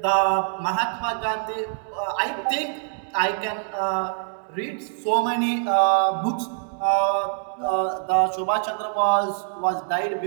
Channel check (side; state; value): left; silent; digital silence